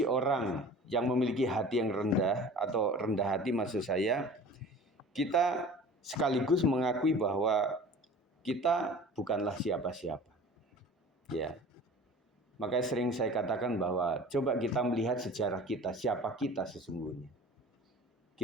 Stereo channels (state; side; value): normal; both; correlation 0.42